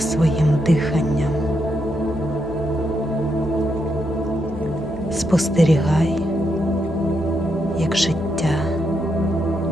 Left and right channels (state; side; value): normal; both; correlation 0.81